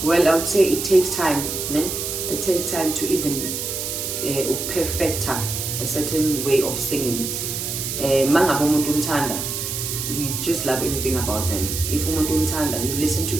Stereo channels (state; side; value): noise; right; hiss, 4 dB below the sound